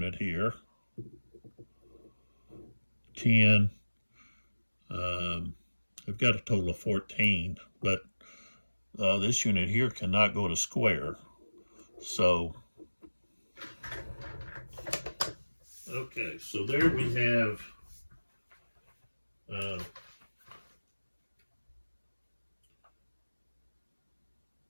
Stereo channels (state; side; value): inverted; both; correlation -1.00